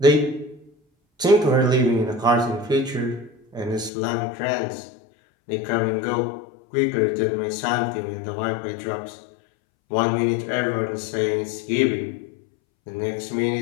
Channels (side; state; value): right; drops out; at 3.9 s